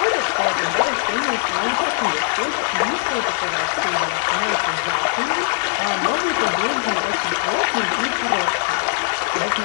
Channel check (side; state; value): right; silent; digital silence